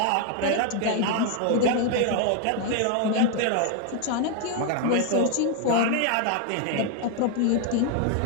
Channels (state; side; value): different; both; correlation 0.00